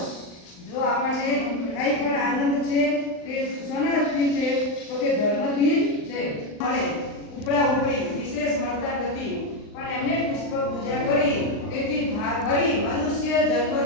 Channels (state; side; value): late; right; 39 ms